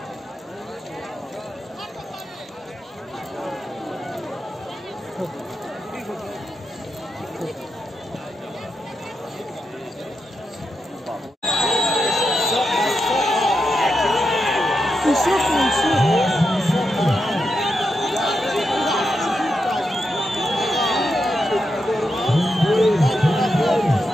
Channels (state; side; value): normal; both; correlation 0.86